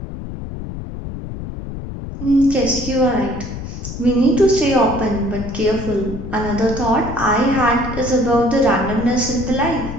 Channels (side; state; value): left; noise; rumble, 8 dB below the sound